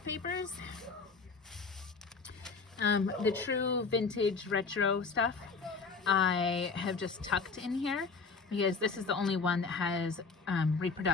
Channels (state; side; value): quieter; right; 4.7 dB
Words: papers. The true vintage retro stuff I have just tucked in here because this is the only one that has